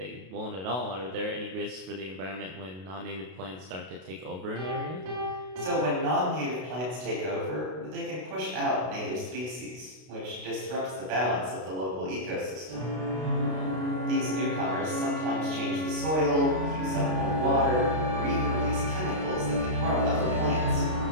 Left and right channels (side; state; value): left; late; 32 ms